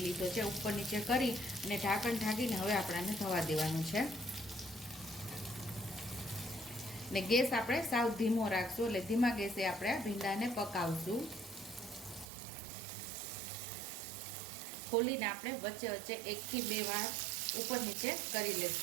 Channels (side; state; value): left; drops out; at 12.2 s